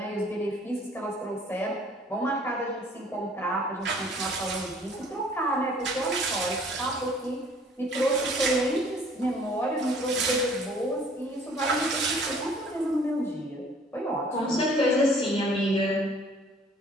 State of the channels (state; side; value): normal; both; correlation 0.55